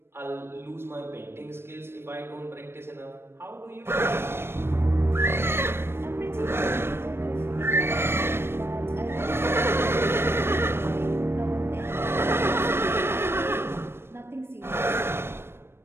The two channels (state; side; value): late; left; 0.12 ms